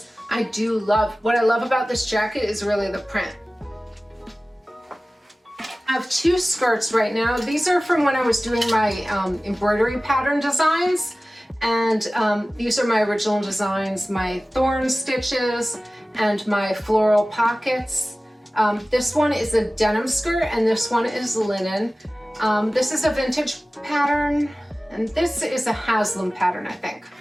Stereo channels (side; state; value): both; normal; correlation 0.97